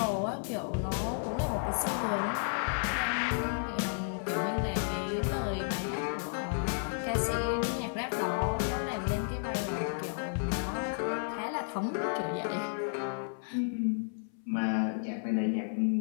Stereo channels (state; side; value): silent; right; 56 dB below the other